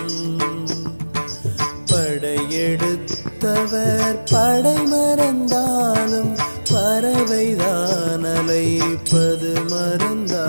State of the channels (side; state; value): both; inverted; correlation -1.00